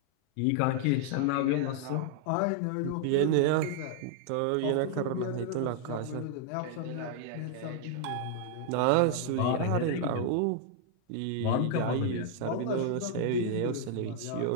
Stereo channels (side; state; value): both; different; correlation 0.00